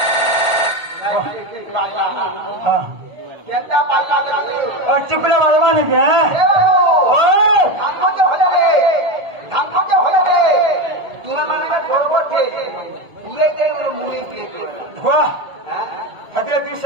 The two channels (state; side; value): late; left; 1.8 ms